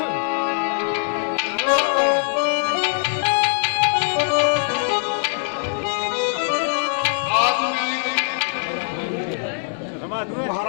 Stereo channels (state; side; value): silent; right; digital silence